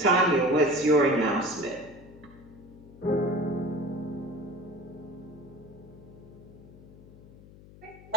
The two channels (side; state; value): left; noise; hum, 20 dB below the sound